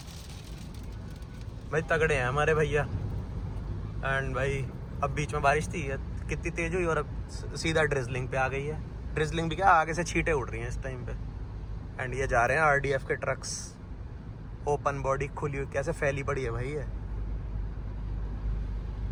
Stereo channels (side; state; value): both; identical; correlation 1.00